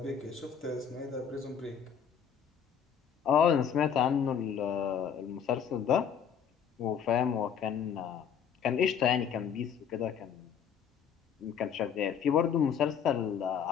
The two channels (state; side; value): quieter; right; 7.8 dB